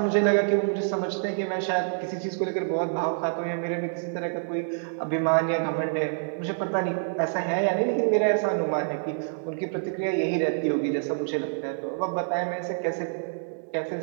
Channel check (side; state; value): left; silent; digital silence